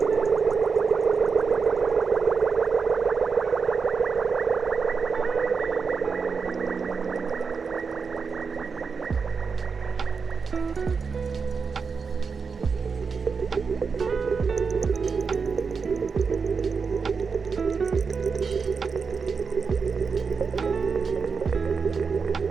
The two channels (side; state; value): left; quieter; 5.3 dB